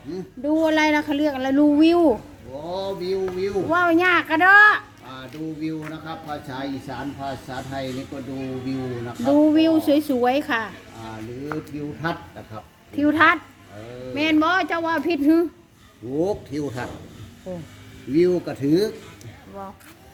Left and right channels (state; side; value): identical; both; correlation 1.00